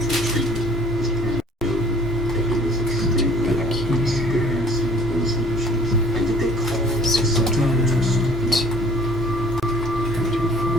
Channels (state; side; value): normal; both; correlation 0.54